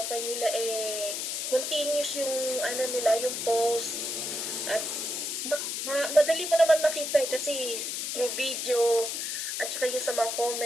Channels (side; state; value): left; noise; hiss, 3 dB below the sound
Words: nila, continuous yung, nila, yung post. At madali mo naman makita kasi through video at saka yung sa mga